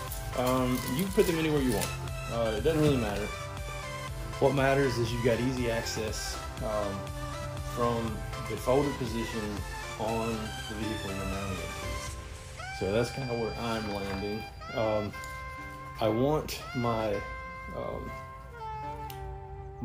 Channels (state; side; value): identical; both; correlation 1.00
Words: You can put them anywhere you want. It doesn't really matter. What matters is you got easy access from the folded position on the vehicle you're mounting it to. So that's kind of where I'm landing. I want my